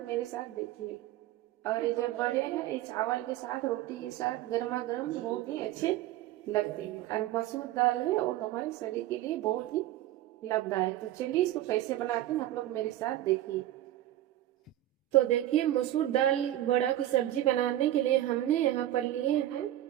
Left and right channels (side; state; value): left; quieter; 13.8 dB